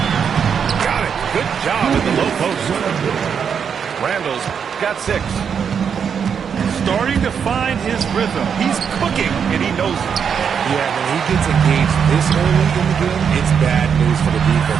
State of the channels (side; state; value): left; quieter; 7.1 dB